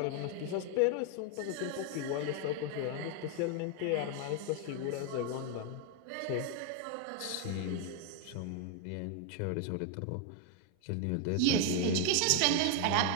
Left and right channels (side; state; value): both; different; correlation 0.01